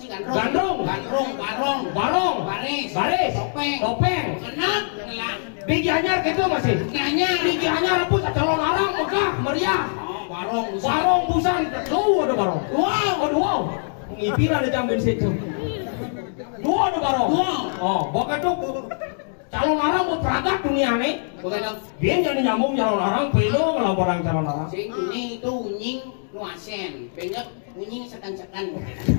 gandrung. Gandrung. Gandrung, barong. Barong. Baris. Baris. Topeng. Topeng. Kenap, ngelak. Di Gianyar gitu masih. Nanya. Di Gianyar pun calon arang megah meriah. Oh, barong. Barong busan. Tuh ada barong. Wow. Oh wow. Ngipir ada jam situ. Dua ada barong. Wow. Oh, pokoknya tuh calon arang mau peragat dunia nih. Bukan dong. Dia jadi nyambung calon arang, pelo ngelaporan calon arang. Sing kuning itu unying nuasen. Banyak unying sekan-sekan.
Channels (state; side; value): silent; right; digital silence